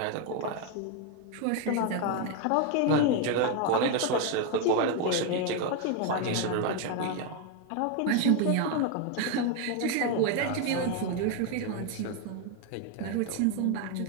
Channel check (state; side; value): different; both; correlation 0.02